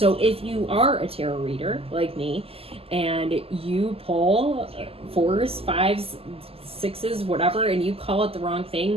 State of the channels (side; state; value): left; late; 0.28 ms